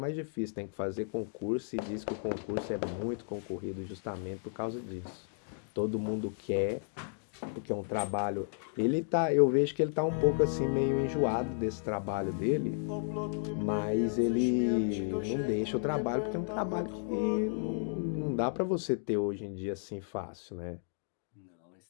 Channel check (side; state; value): right; silent; digital silence